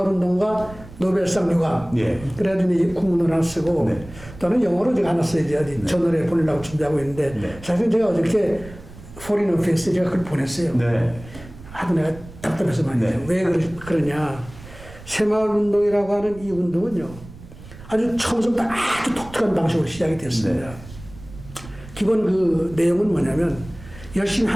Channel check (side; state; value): right; noise; rumble, 17 dB below the sound